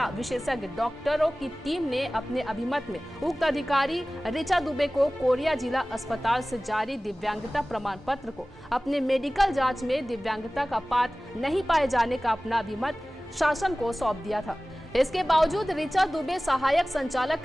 विशेषज्ञ डॉक्टरों की टीम ने अपने अभिमत में उक्त अधिकारी ऋचा दुबे को कोरिया जिला अस्पताल से जारी दिव्यांगता प्रमाण पत्र को अपने मेडिकल जांच में दिव्यांगता का पात्र नहीं पाए जाने का अपना अभिमत शासन को सौंप दिया था। इसके बावजूद ऋचा दुबे सहायक संचालक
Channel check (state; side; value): normal; both; correlation 0.98